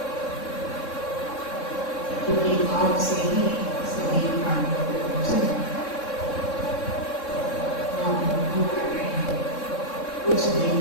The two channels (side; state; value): right; late; 3.6 ms